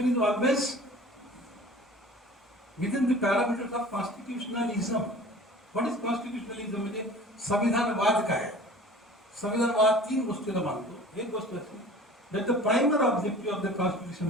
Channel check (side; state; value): both; normal; correlation 0.43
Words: is always within the parameters of constitutionalism. What is constitutionalism? म्हणजे संविधानवाद काय? संविधानवाद तीन गोष्टीला मानतो. एक गोष्ट अशी that the primary objective of the constitution